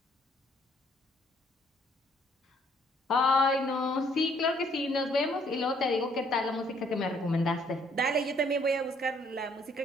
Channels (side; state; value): both; normal; correlation 0.65